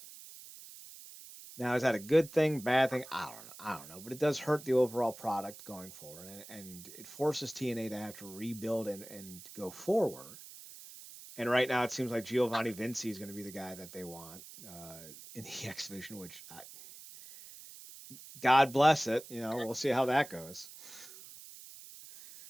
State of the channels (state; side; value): noise; right; hiss, 16 dB below the sound